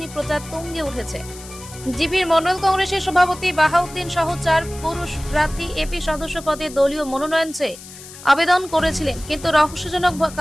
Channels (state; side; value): noise; left; hiss, 16 dB below the sound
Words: প্রচার তুঙ্গে উঠেছে। জিপির মন্ডল কংগ্রেসের সভাপতি বাহাউদ্দিন সহ 4 পুরুষ প্রার্থী এপি সদস্য পদে দলীয় মনোনয়ন চেয়ে আবেদন করেছিলেন, কিন্তু রহস্যজনক